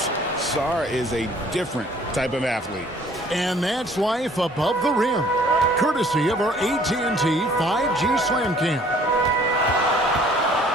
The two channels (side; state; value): both; normal; correlation 0.56